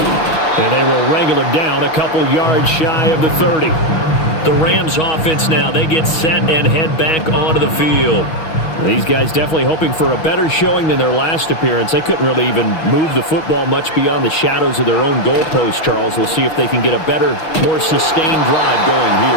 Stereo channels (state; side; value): late; right; 6.3 ms